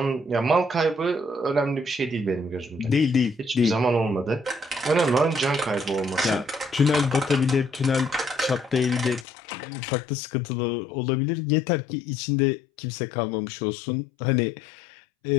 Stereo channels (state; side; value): drops out; right; at 9.2 s